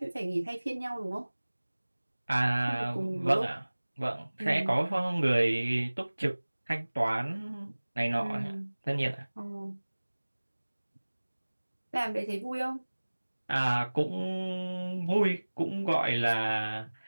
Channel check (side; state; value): both; inverted; correlation -1.00